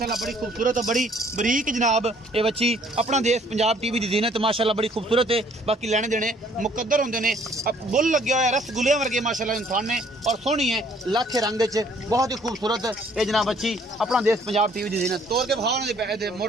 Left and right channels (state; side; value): normal; both; correlation 0.61